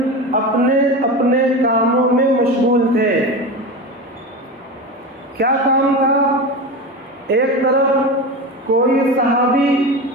اپنے اپنے کاموں میں مشغول تھے۔ کیا کام تھا؟ ایک طرف کوئی صحابی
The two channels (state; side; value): normal; both; correlation 0.25